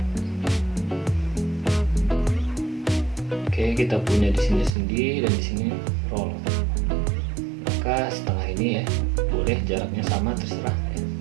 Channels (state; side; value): drops out; left; at 4.8 s